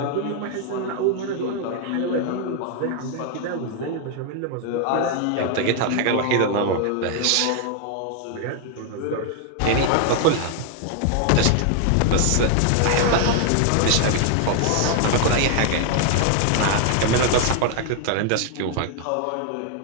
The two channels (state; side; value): different; both; correlation 0.00